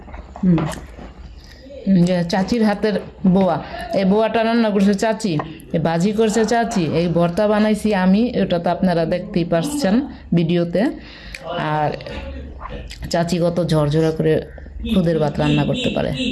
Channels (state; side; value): identical; both; correlation 1.00